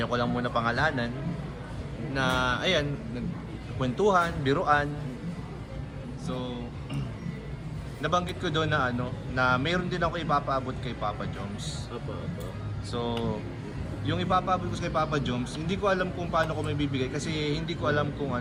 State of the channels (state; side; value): identical; both; correlation 1.00